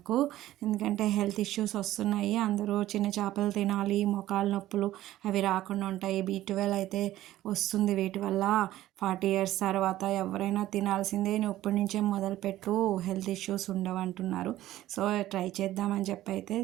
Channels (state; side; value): quieter; left; 14.6 dB